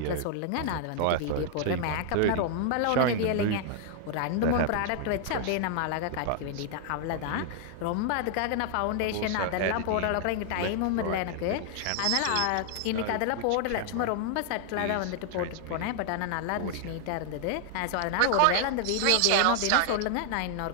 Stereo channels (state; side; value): different; both; correlation 0.00